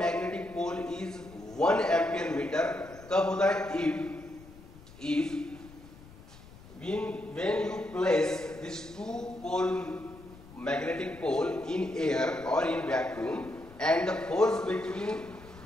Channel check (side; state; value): left; noise; rumble, 20 dB below the sound